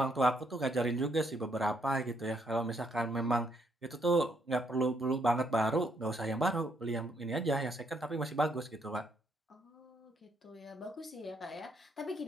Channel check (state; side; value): normal; both; correlation 0.73